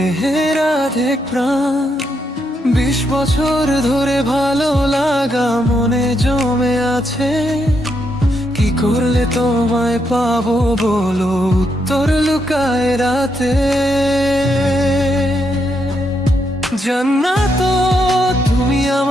আধেক প্রাণ। 20 বছর ধরে ভালো লাগা মনে জমে আছে, কি করলে তোমায় পাবো বলো, উত্তর লুকায় রাতে। জান্নাত তুমি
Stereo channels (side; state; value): both; normal; correlation 0.79